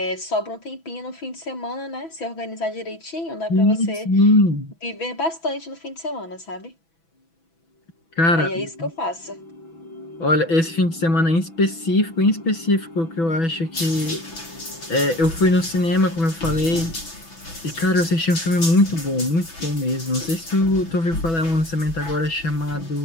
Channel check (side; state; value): right; late; 6.1 ms